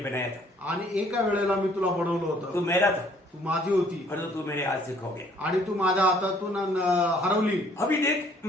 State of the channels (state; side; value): normal; both; correlation 0.60